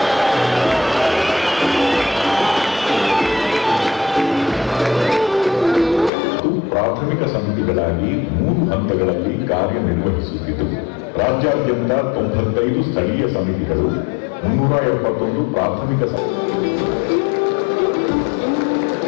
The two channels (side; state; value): right; drops out; at 6.1 s